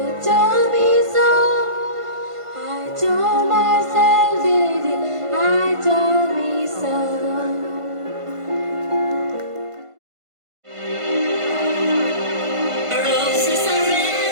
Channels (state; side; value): late; left; 1.5 ms